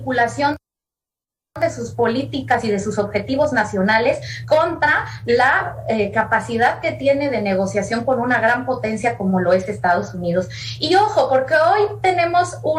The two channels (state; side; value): identical; both; correlation 1.00